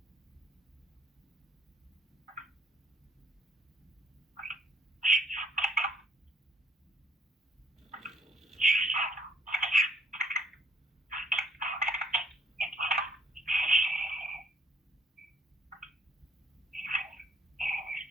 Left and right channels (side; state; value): both; normal; correlation 0.65